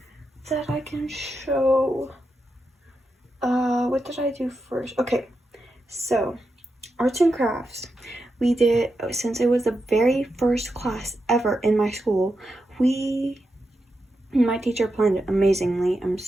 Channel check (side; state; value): both; normal; correlation 0.87